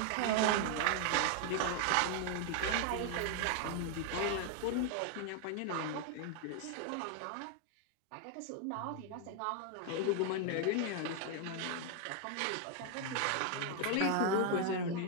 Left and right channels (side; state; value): both; different; correlation 0.00